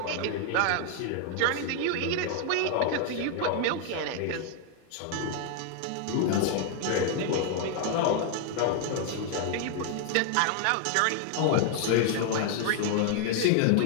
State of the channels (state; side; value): different; both; correlation 0.00